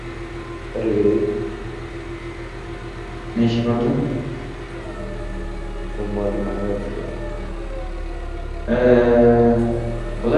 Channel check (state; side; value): identical; both; correlation 1.00